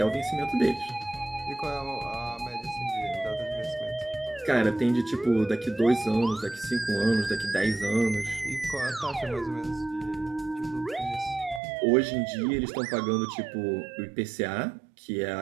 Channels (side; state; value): left; drops out; at 11.6 s